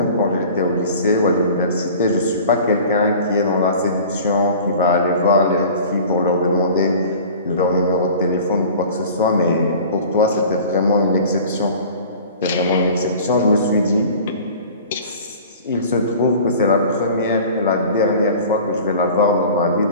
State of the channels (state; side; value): inverted; both; correlation -0.42